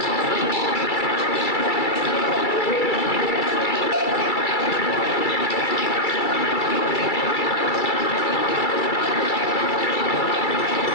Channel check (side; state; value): right; late; 2.3 ms